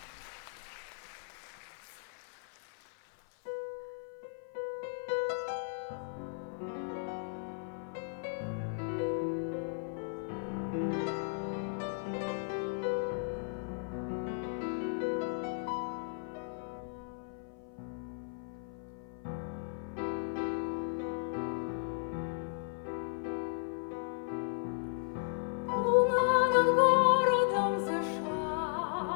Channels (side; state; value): right; silent; 54 dB below the other